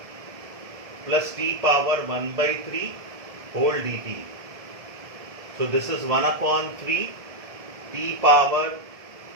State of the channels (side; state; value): left; late; 1.7 ms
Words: plus t power 1 by 3 whole dt. So this is 1 upon 3 t power